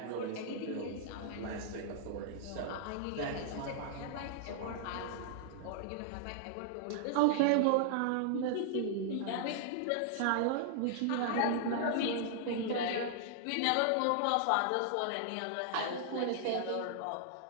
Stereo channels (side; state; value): both; different; correlation -0.01